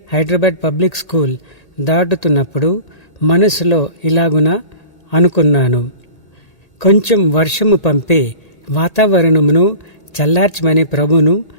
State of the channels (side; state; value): right; late; 1.8 ms